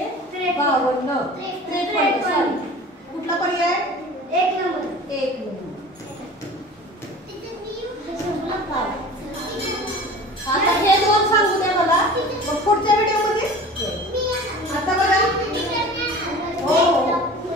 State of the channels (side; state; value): both; normal; correlation 0.40